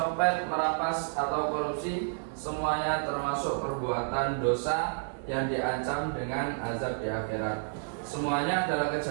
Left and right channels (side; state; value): left; silent; digital silence